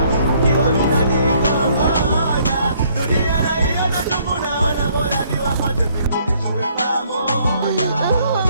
Kiwa mnadili kwa moja. Dunia na hiyo na tunaona bora ni wapate mkunijue pamoja.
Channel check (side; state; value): both; inverted; correlation -0.65